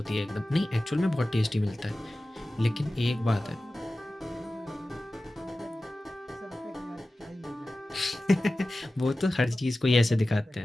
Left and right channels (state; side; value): normal; both; correlation 0.95